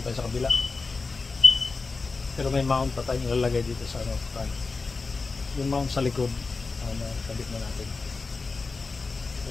tayo sa kabila. Pero may mount pa tayong ilalagay dito sa front. Yung mount sa likod, kabit na natin.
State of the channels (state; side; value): quieter; right; 4.2 dB